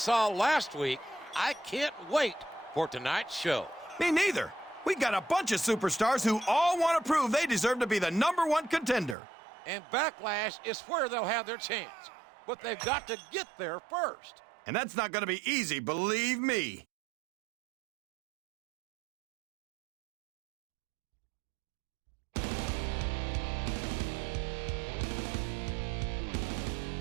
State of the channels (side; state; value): left; drops out; at 9.2 s